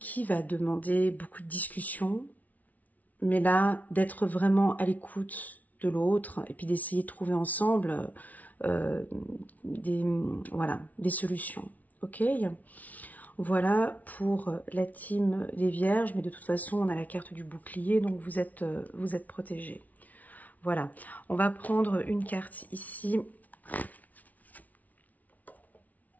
va demander beaucoup de discussions, mais là, d'être vraiment à l'écoute de l'autre et puis d'essayer de trouver ensemble des solutions. Ok, voilà pour la team des Vierges, mais de toute façon on a la carte du bouclier, donc vous êtes protégés. Voilà, on va prendre une carte ici.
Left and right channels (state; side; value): late; right; 0.073 ms